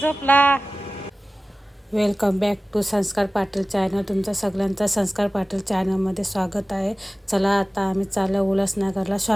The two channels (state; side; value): normal; both; correlation 0.97